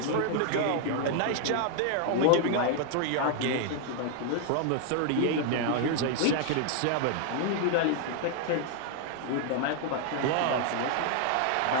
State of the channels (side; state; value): both; different; correlation 0.00